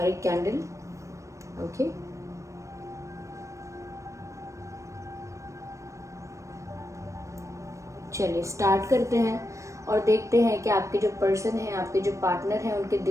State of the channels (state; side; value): late; left; 0.15 ms